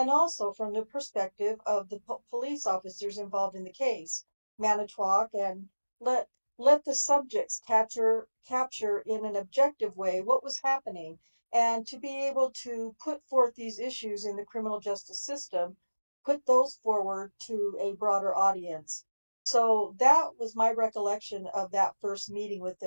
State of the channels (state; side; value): inverted; both; correlation -1.00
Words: also from the perspective of the police officers involved in the case. Manitowoc and let let the subjects capture in an objective way what was happening and to be able to put forth these issues in the criminal justice system, put those forward to a broader audience. So that was my recollection of that first meeting with